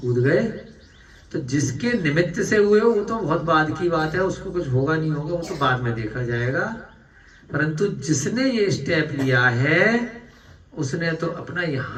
गए, तो जिसके निमित्त से हुए वो तो बहुत बाद की बात है, उसको कुछ होगा नहीं होगा वो तो बाद में देखा जाएगा। परंतु जिसने ये स्टेप लिया है उसने तो अपना,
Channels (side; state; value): both; identical; correlation 1.00